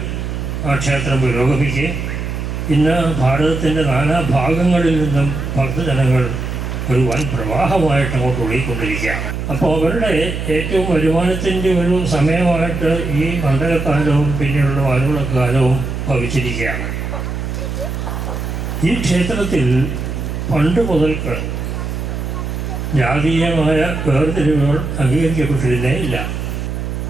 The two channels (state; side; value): noise; right; hum, 4 dB below the sound